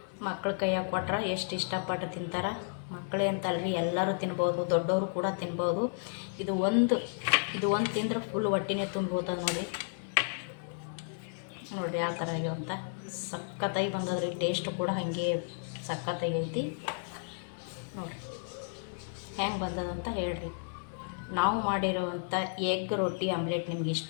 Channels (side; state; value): right; silent; digital silence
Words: ಮಕ್ಳ ಕೈಯಾಗ ಕೊಟ್ರೆ ಎಷ್ಟು ಇಷ್ಟಪಟ್ಟು ತಿಂತಾರೆ. ಮಕ್ಕಳೇ ಅಂತಲ್ರಿ, ಎಲ್ಲರೂ ತಿನ್ಬೋದು, ದೊಡ್ಡವರು ಕೂಡ ತಿನ್ಬೋದು. ಇದು ಒಂದು ತಿಂದ್ರೆ ಫುಲ್ ಹೊಟ್ಟಿನೇ ತುಂಬೋತದೆ ನೋಡಿರಿ. ನೋಡಿರಿ ಯಾವ ಥರ ಆಗ್ಯಾವ ಅಂತ. ಸಖತ್ತಾಗಿ ಬಂದದ್ರಿ. ಟೇಸ್ಟ್ ಕೂಡ ಹಾಗೆ ಸಖತ್ತಾಗಿ ಐತಿ ನೋಡಿರಿ. ಹೆಂಗೆ ಬಂದದಂತ ಹೇಳ್ರಿ. ನಾವು ಮಾಡಿರೋವಂಥ ಎಗ್ ರೊಟ್ಟಿ ಆಮ್ಲೆಟ್ ನಿಮ್ಗೆ